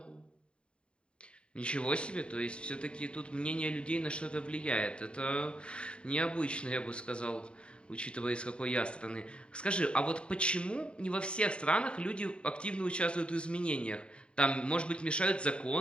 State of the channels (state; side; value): late; right; 0.055 ms